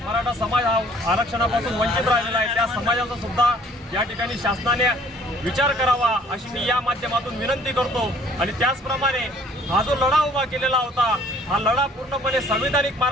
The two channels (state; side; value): normal; both; correlation 0.57